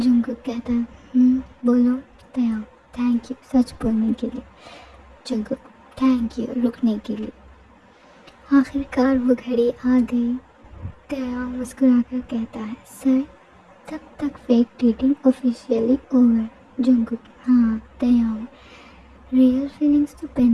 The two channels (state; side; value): identical; both; correlation 1.00